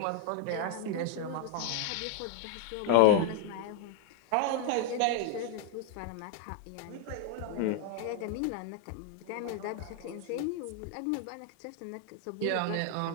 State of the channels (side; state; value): both; different; correlation -0.01